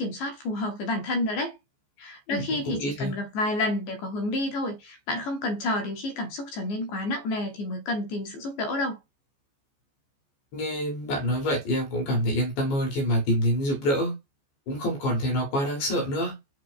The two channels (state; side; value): late; right; 14 ms